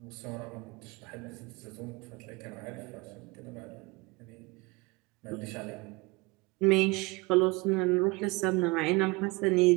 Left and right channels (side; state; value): left; quieter; 25.3 dB